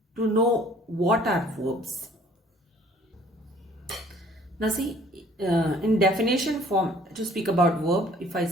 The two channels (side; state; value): both; normal; correlation 0.55